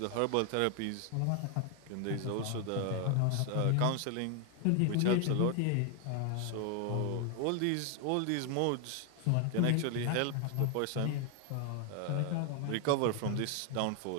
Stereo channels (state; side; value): different; both; correlation 0.01